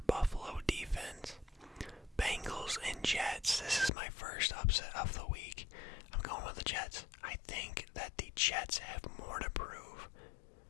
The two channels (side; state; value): right; drops out; at 3.9 s